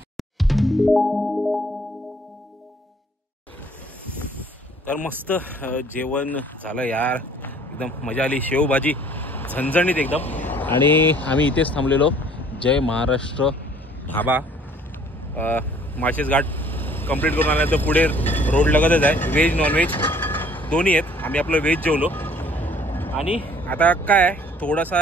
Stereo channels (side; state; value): both; normal; correlation 0.57